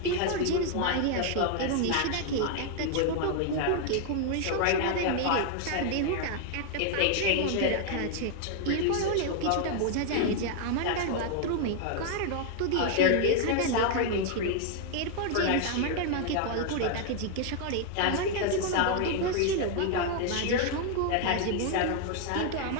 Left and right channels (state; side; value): different; both; correlation 0.00